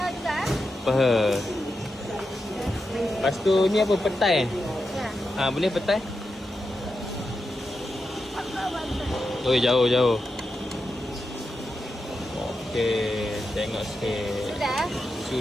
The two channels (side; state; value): both; normal; correlation 0.88